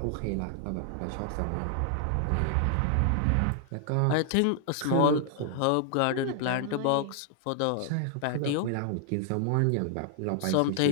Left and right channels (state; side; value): different; both; correlation 0.00